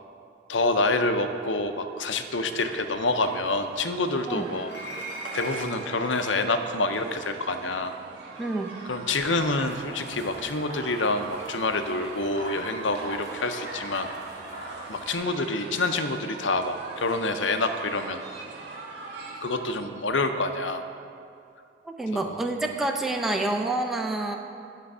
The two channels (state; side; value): normal; both; correlation 0.04